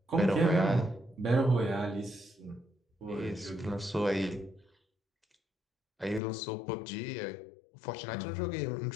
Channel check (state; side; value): drops out; right; at 6.2 s